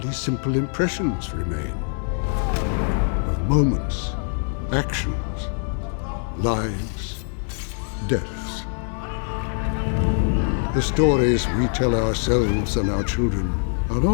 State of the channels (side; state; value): right; silent; 59 dB below the other